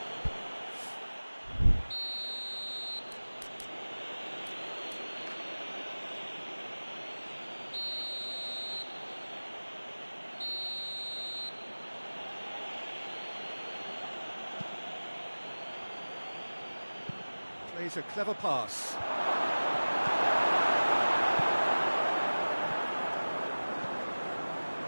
Plays a clever pass.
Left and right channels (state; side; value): inverted; both; correlation -1.00